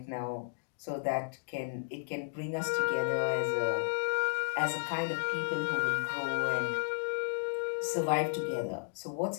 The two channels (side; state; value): right; silent; digital silence